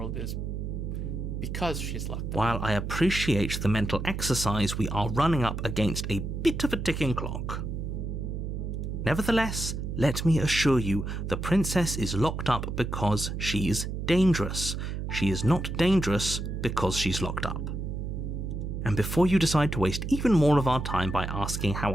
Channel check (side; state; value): right; noise; hum, 4 dB below the sound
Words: is because she's locked up? While I appreciate the mental exercise, we are running up against a bit of a ticking clock. Nevertheless, let me assure you, the princess is locked up because she's dangerous. She is not dangerous because she's locked up. And before you decide to waste even more of our time by asking